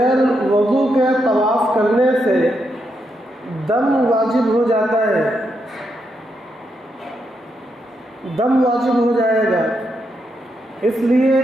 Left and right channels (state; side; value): normal; both; correlation 0.81